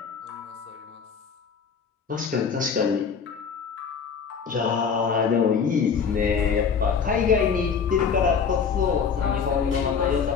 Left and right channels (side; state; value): right; quieter; 6.2 dB